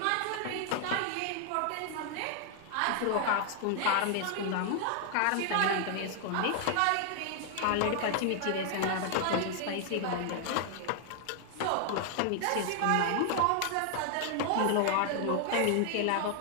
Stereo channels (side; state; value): both; different; correlation 0.00